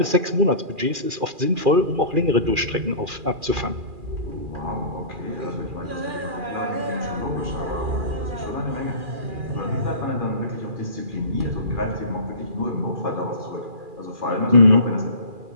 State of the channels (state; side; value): late; left; 2.4 ms